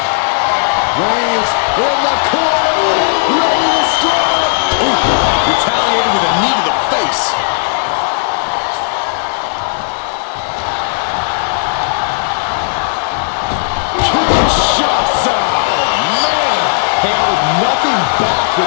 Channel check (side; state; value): right; silent; digital silence